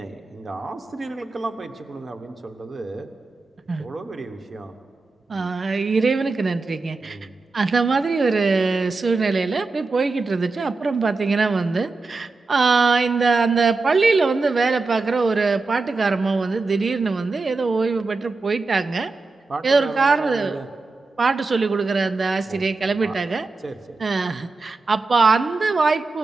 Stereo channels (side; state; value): left; quieter; 3.8 dB